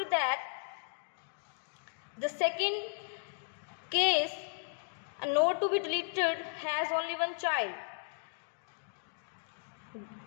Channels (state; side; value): silent; right; digital silence